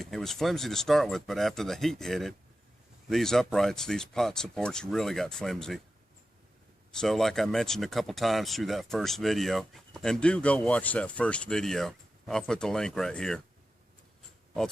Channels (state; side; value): normal; both; correlation 0.92